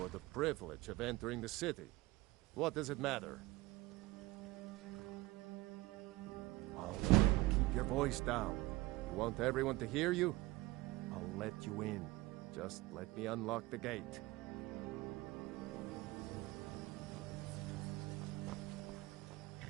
the privilege of entering the city. What does it matter? Oh, keep your voice down. You want everyone to hear you? I'll let you in. Just let me unlock the gate.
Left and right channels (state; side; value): quieter; left; 19.7 dB